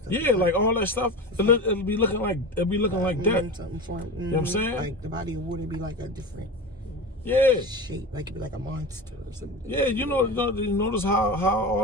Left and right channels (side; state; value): both; normal; correlation 0.28